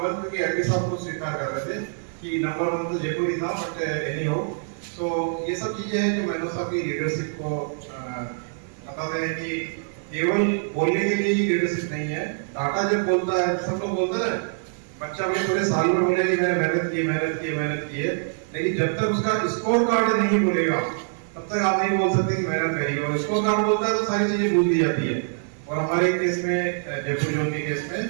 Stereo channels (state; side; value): silent; left; digital silence